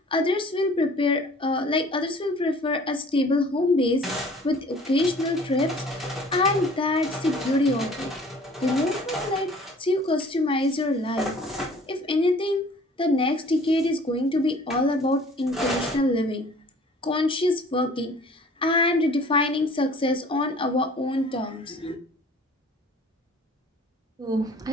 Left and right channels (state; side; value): normal; both; correlation 0.50